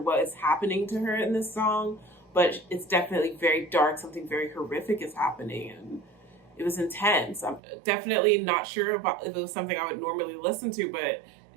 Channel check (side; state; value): left; drops out; at 7.6 s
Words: is happening to her in this song, but it's definitely very dark. Something very horrific is happening, and it was intense. I'm definitely not sure if it was something I would normally listen to, but